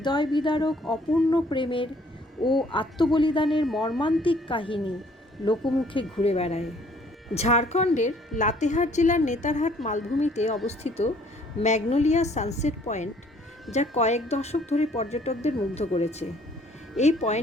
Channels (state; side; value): normal; both; correlation 0.60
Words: বিদারক অপূর্ণ প্রেমের ও আত্মবলিদানের মর্মান্তিক কাহিনী লোকমুখে ঘুরে বেড়ায়। ঝাড়খণ্ডের লাতেহার জেলার নেতারহাট মালভূমিতে অবস্থিত ম্যাগনোলিয়া সানসেট পয়েন্ট, যা কয়েক দশক ধরে পর্যটকদের মুগ্ধ করেছে। এই